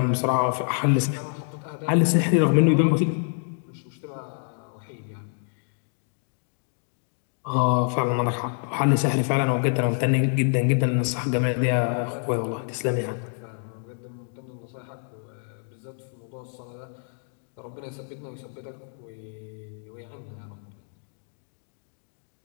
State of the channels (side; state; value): right; silent; 60 dB below the other